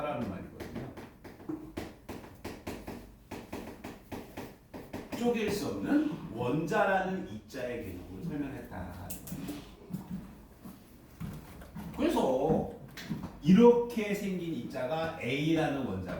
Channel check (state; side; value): identical; both; correlation 1.00